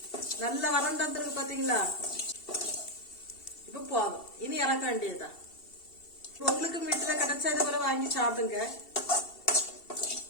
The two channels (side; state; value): right; late; 2.7 ms